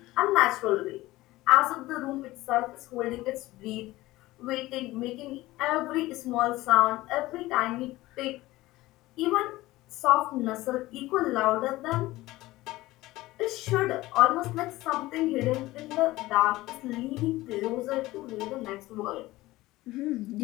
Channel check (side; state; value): right; quieter; 18.2 dB